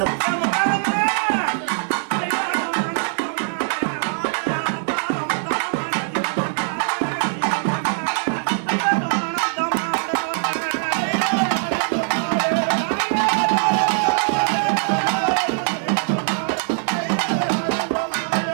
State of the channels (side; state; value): left; silent; digital silence